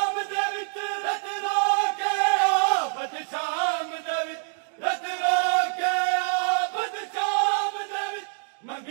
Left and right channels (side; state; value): left; silent; 61 dB below the other